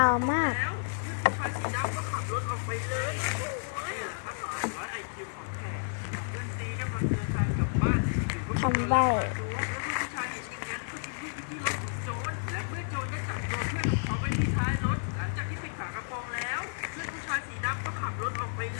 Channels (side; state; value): right; silent; digital silence